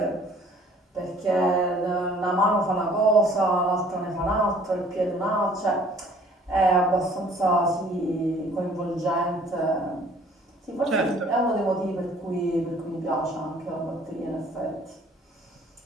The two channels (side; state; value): both; normal; correlation 0.55